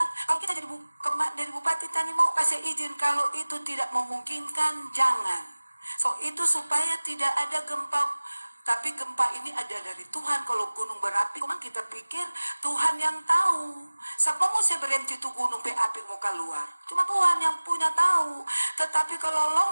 Kalau kita dari bupati tadi mau kasih izin, kalau itu tidak memungkinkan jangan. So itu supaya tidak ada gempa. Tapi gempa ini ada dari Tuhan. Kalau gunung berapi, memang kita pikir Tuhan yang tahu. Siapa mau saya berhenti itu gunung berapi mau keluar? Cuma Tuhan yang punya tahu. Tetapi kalau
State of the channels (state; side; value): inverted; both; correlation -1.00